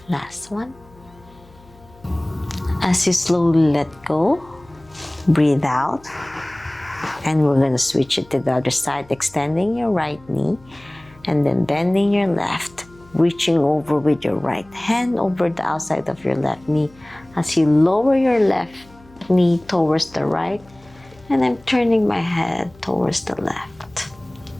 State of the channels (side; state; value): left; noise; hum, 26 dB below the sound